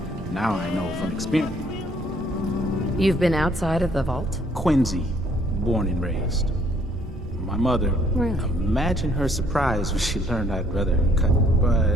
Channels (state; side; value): normal; both; correlation 0.64